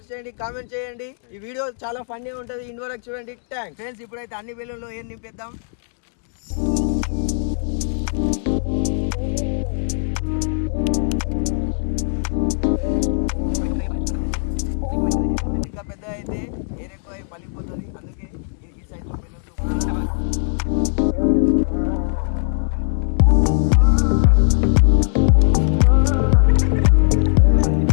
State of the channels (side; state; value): right; silent; digital silence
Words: చేయండి, కామెంట్ చేయండి. ఈ వీడియో చాలా ఫన్నీ ఉంటుంది, ఎండ్ వరకు చూడండి. Thanks friends. ఇప్పుడైతే అన్ని బెలూన్లో ఏం నింపేద్దాం. ఇంకా పెద్ద అయితే ఎయిర్ ఎక్కువ పలిపోతుంది, అందుకే ఈ సైజ్